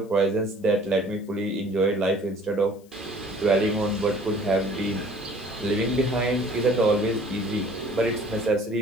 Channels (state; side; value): noise; left; hiss, 29 dB below the sound